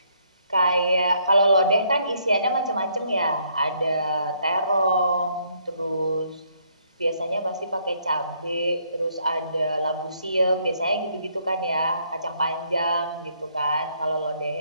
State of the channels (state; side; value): inverted; both; correlation -0.70